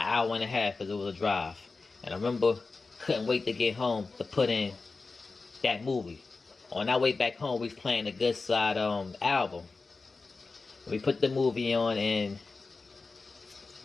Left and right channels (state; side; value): quieter; right; 4.0 dB